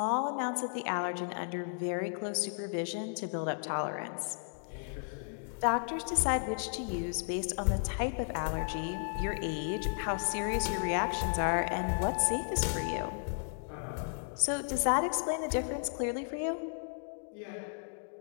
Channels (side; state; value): right; silent; digital silence